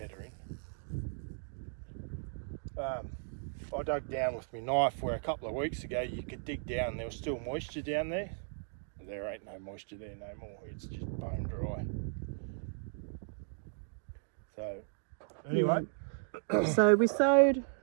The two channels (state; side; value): silent; left; digital silence